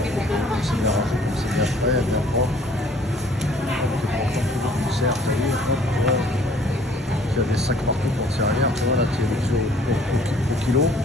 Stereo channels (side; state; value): both; normal; correlation 0.56